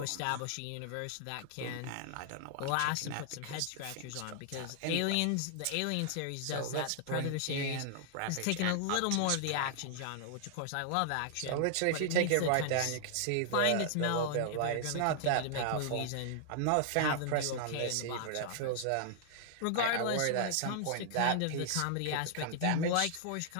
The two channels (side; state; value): both; different; correlation 0.00